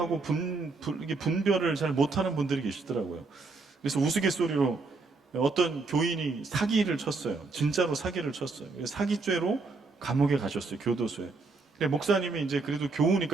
분별을 잘 못하는 분들이 계시더라고요. 그래서 우스갯소리로 어떤 교인이 사기를 쳤어요. 진짜로 사기를 쳤어요. 사기죄로 감옥에 가셨어요. 교도소에. 목사님이 이제 그래도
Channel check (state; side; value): quieter; left; 3.9 dB